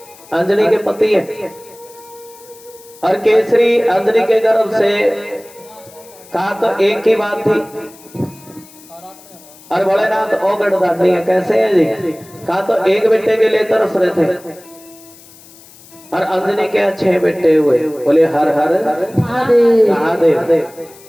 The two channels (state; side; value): noise; left; hiss, 23 dB below the sound